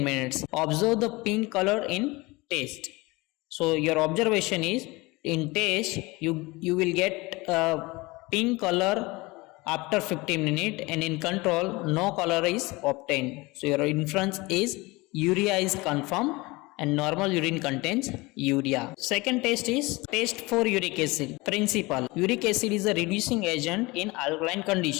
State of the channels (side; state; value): right; quieter; 23.1 dB